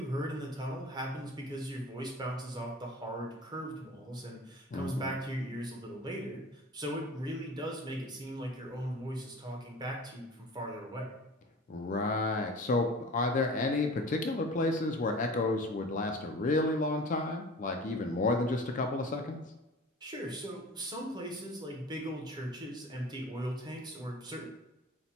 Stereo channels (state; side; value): normal; both; correlation 0.40